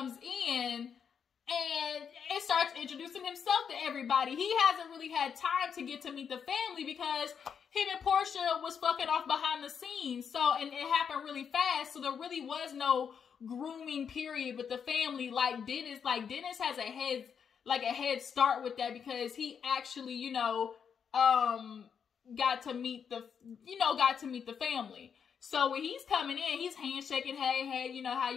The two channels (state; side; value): quieter; right; 7.1 dB